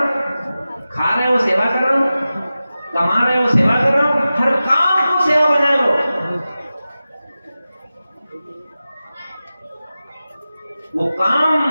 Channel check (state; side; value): inverted; both; correlation -0.95